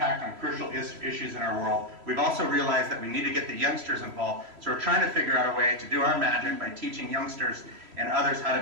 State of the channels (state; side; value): late; left; 3.0 ms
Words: on crucial issues in our world. We've also realized that we need to get the youngsters involved, so we're trying to figure out a way to do our magic by teaching youngsters and others how